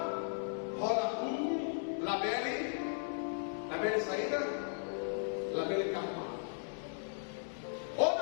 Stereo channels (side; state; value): right; silent; digital silence